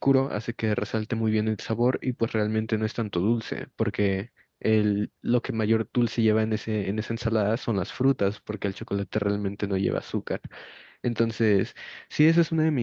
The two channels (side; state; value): both; identical; correlation 1.00